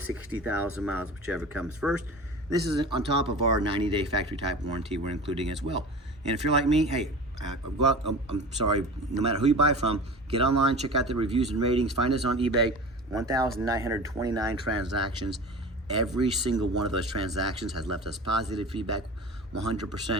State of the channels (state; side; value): normal; both; correlation 0.35